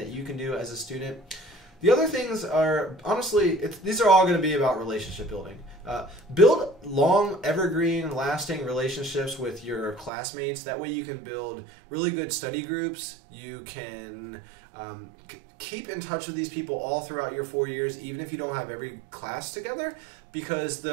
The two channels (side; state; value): left; drops out; at 10.1 s